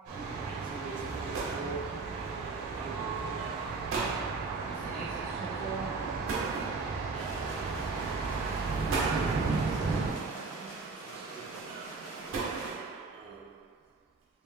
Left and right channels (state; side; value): quieter; left; 4.0 dB